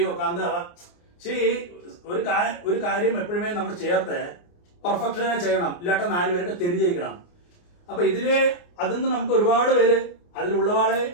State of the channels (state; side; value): late; right; 29 ms